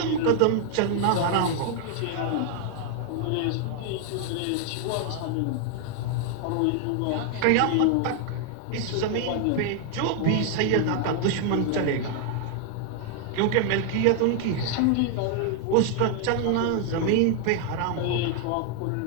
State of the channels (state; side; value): different; both; correlation 0.00